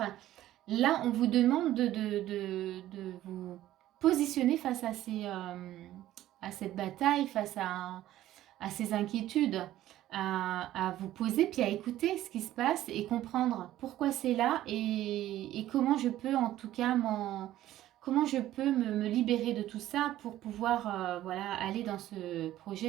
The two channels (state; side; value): quieter; left; 13.9 dB